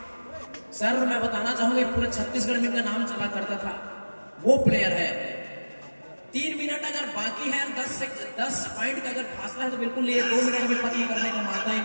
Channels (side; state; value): both; inverted; correlation -1.00